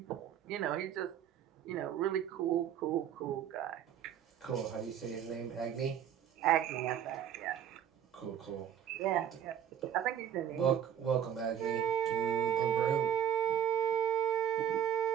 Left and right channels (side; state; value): left; quieter; 9.6 dB